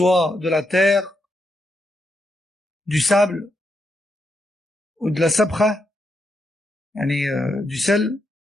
de la terre, du sable, ou de la sabra, du sel,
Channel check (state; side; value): normal; both; correlation 0.81